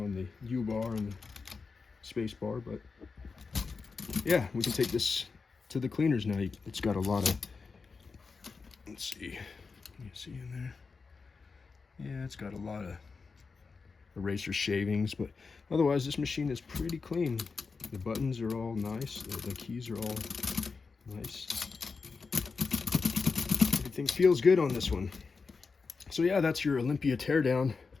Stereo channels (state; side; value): quieter; right; 4.7 dB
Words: on the U-bar and the space bar, but yeah, we can take this to the cleaners now. It's got a lot of, let's see, can you see in there? Yeah, it's got a lot of eraser shavings, but otherwise this machine is pretty clean. The buttons are all nice, the keys are all nice. Everything feels good on this one. So yeah, that's your Olympia teardown.